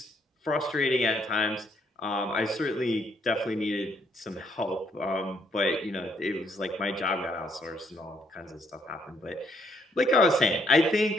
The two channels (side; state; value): both; normal; correlation 0.70